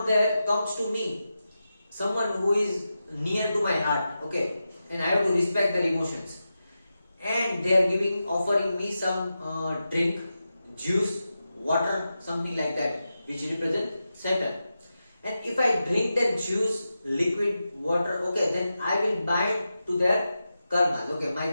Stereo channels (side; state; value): both; inverted; correlation -0.91